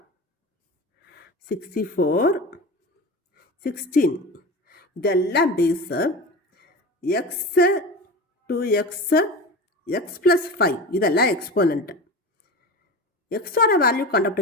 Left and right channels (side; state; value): both; normal; correlation 0.29